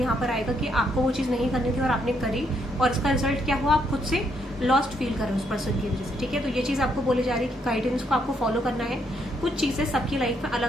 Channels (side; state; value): both; normal; correlation 0.74